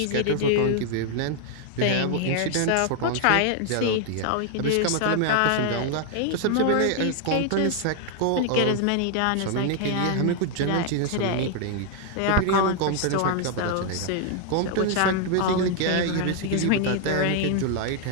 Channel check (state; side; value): different; both; correlation 0.00